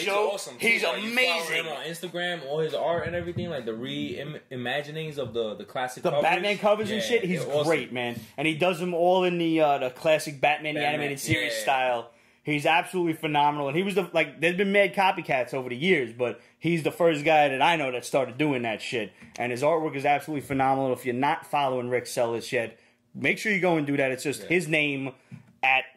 Awesome. He's like, amazing. You follow him on Instagram, all his art and everything, like the reimaginings of the classic covers. Batman covers and shit. He's great, man. And he does them all in the classic Batman the animated series style. He's absolutely phenomenal. And he was there's been mad copycats over the years, but he's the first guy that I know that started doing that shit. And his artwork is absolutely phenomenal. If you're not following Rick Cellies yet, make sure you go and do that. It's just his name at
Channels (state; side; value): identical; both; correlation 1.00